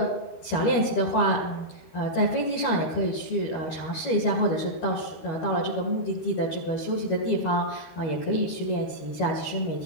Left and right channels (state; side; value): late; right; 12 ms